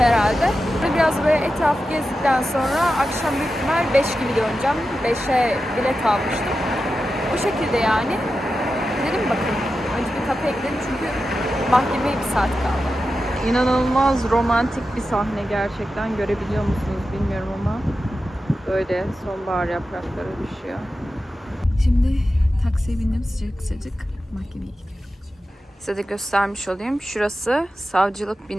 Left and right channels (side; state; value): both; normal; correlation 0.91